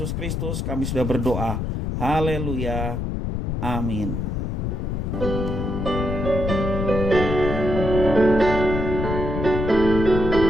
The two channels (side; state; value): left; noise; rumble, 2 dB below the sound